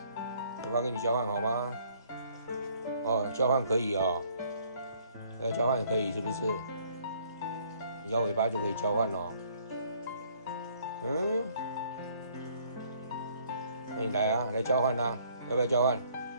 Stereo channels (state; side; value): inverted; both; correlation -0.62